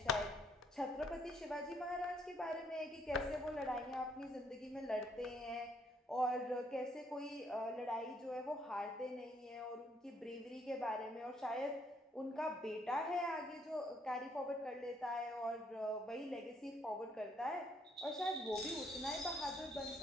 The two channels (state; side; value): normal; both; correlation 0.69